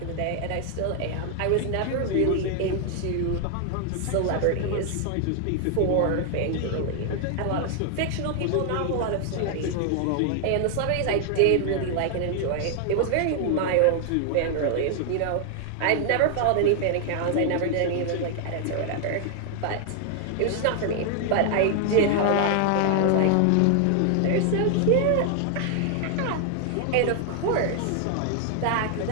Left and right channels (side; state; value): both; different; correlation 0.00